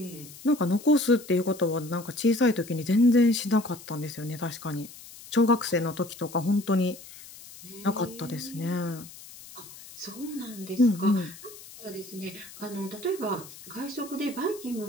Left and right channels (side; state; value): left; noise; hiss, 17 dB below the sound